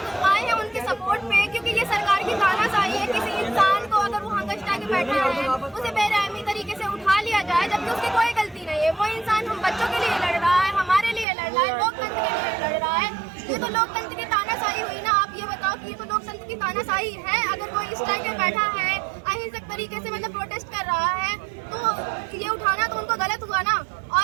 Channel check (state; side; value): drops out; left; at 11.2 s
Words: आए हैं उनके सपोर्ट पे, क्योंकि ये सरकार की तानाशाही है। किसी इंसान को अगर वो हंगस्टा के बैठा है उसे बेरहमी तरीके से उठा लिया जाए जबकि उसकी कोई गलती नहीं है। वो इंसान हम बच्चों के लिए लड़ रहा है, हमारे लिए लड़ रहा है, लोकतंत्र के लिए लड़ रहा है। ये तो लोकतंत्र की तानाशाही हुई ना। आप ये बताओ कि ये तो लोकतंत्र की तानाशाही है। अगर कोई इस टाइम पे बैठा है अहिंसक तरीके से मतलब प्रोटेस्ट कर रहा है तो ये उठाना तो उनको गलत हुआ ना।